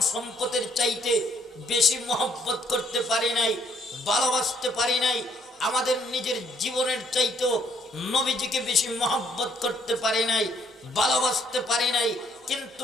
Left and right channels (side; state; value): both; normal; correlation 0.67